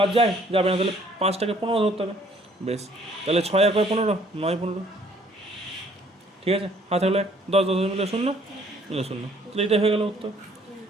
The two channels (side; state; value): both; normal; correlation 0.60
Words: যায়? যাবে না। তাহলে 5টাকে 15 ধরতে হবে। বেশ, তাহলে 6 আর 15, 9 15। ঠিক আছে, হাতে হলো 1, 10 10 মিলে 0 মিলে 0। তাহলে এটাই হয়ে গেল উত্তর।